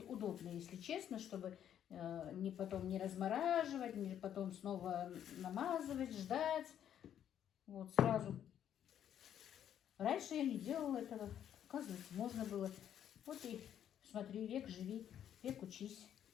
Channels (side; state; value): right; quieter; 9.9 dB